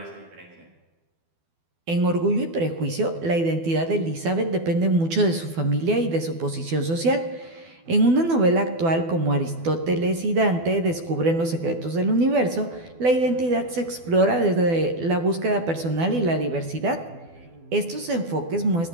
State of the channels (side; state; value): left; late; 12 ms